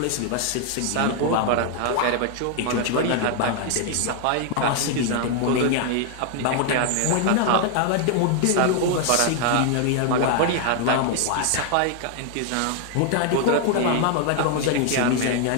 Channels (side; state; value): both; different; correlation 0.00